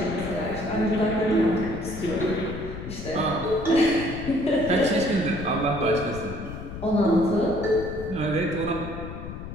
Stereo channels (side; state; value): left; noise; rumble, 9 dB below the sound